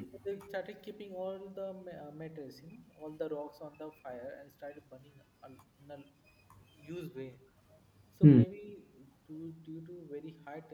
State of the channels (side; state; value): both; identical; correlation 1.00